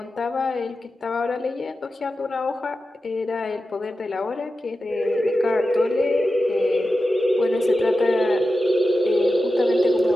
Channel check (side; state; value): both; normal; correlation 0.92